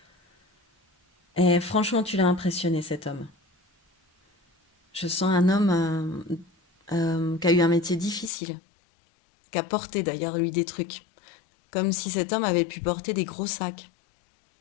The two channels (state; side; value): drops out; right; at 8.3 s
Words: Et franchement, tu l'as impressionné, cet homme. Je sens un homme qui a eu un métier difficile, qui a porté d'ailleurs, lui, des trucs. Comme si cet homme avait pu porter des gros sacs